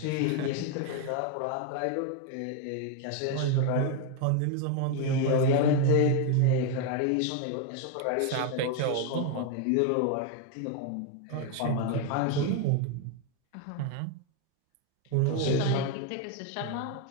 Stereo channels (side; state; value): both; different; correlation 0.01